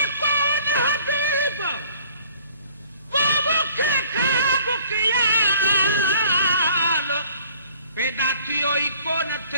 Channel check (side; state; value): both; inverted; correlation -0.54